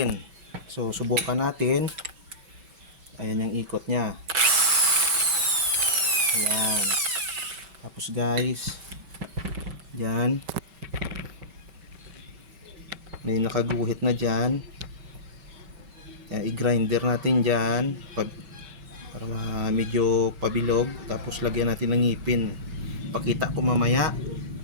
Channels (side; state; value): left; late; 5.2 ms